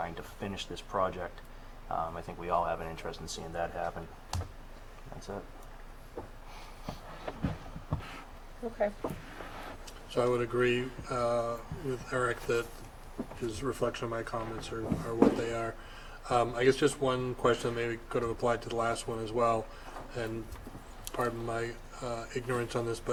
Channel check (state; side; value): identical; both; correlation 1.00